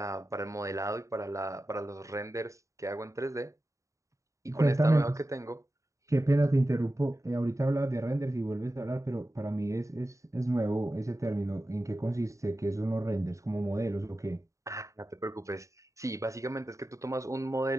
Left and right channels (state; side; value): late; left; 0.15 ms